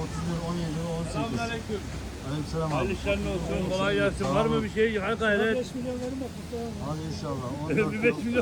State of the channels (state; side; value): identical; both; correlation 1.00